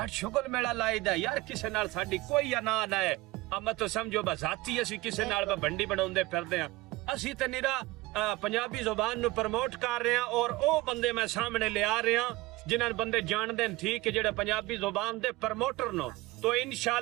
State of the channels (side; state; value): left; quieter; 20.0 dB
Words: ਸ਼ੁਗਲ ਮੇਲਾ ਲਾਈਦਾ ਯਾਰ ਕਿਸੇ ਨਾਲ ਸਾਡੀ ਕੋਈ ਅਨਾ ਨਾ ਹੈ ਆ ਮੈਂ ਤਾਂ ਸਮਝੋ ਬਜ਼ਾਤੀ ਅਸੀਂ ਕਿਸੇ ਨਾਲ ਭੰਡੀ ਬਣਾਉਂਦੇ ਫਿਰਦੇ ਆ ਅਸੀਂ ਤੇ ਨਿਰਾ पंजाबी जुबान नु प्रमोट कर रहे हैं और वो बंदे मैं सामने ले आ रहे हैं जिन्हें बंदे जानते हैं ठीक है जेड़े पंजाबी जुबान दे प्रमोटर नो तो